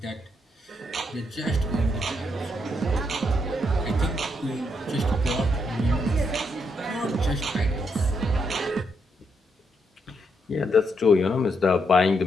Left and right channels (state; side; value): normal; both; correlation 0.78